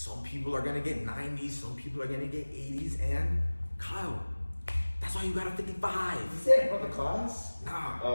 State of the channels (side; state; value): both; inverted; correlation -1.00